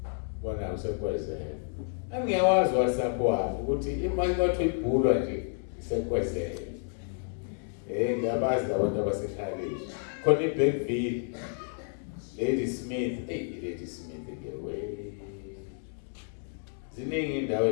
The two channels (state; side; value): silent; right; 58 dB below the other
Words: bona usekwezela angiyawazi WhatsApp wami ukuthi imali kwathi ibhulwa nje isekwezela ngiyabazi abantu abasekhaya khona iBackville Lady Smith Lady Smith ngewe ziningi indawo